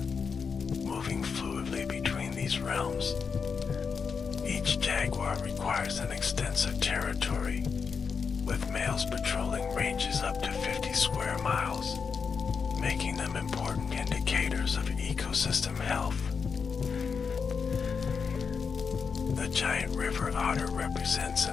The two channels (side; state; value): right; quieter; 5.8 dB